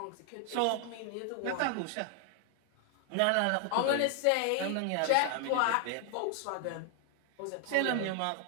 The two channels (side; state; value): both; different; correlation 0.00